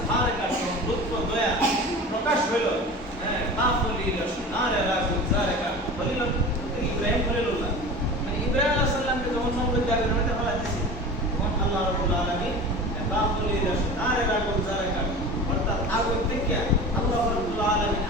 কাদ, লুৎফ দয়া প্রকাশ হলো, হ্যাঁ, বাফলিল শনার রাগুল জারকাত। খলিল ইব্রাহিম খলিলুল্লাহ, ইব্রাহিম আলাইহিস সালামকে যখন সমুদ্রের জায়গায় নামাতে ফেলা দিয়েছে, তখন আল্লাহ রাব্বুল আলামিন বাফলিল শনার রাগুল জারকাত, অর্থাৎ আগুন থেকে আল্লাহ রাব্বুল আলামিন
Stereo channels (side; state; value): both; normal; correlation 0.34